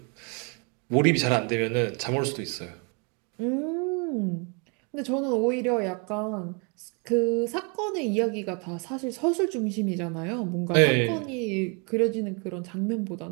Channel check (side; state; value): left; quieter; 34.3 dB